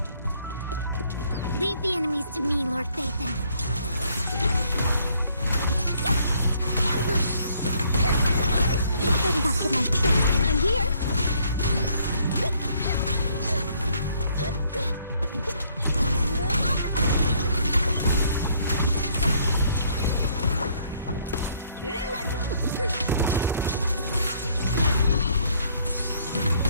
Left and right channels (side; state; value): both; inverted; correlation -0.66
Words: Leave the enemies to me, Lord Vathan. Ambush! You better not get my trick. I'm here.